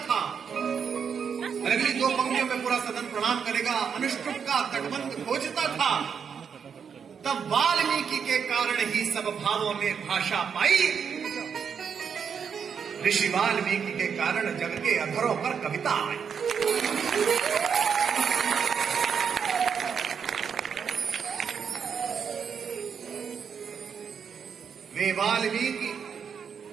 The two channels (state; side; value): quieter; left; 6.9 dB